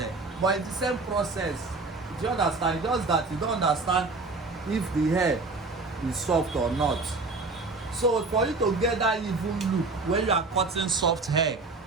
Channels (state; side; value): quieter; left; 3.7 dB